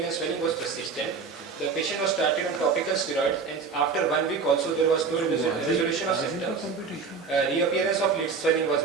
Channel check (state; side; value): quieter; left; 5.1 dB